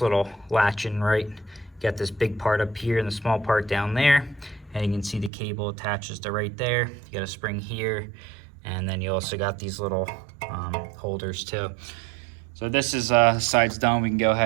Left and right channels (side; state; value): left; drops out; at 5.3 s